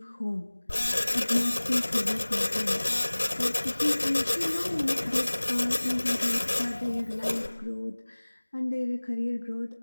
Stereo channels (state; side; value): inverted; both; correlation -1.00